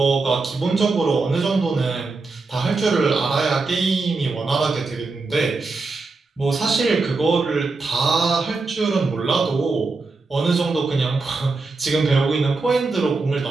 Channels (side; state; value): left; quieter; 3.8 dB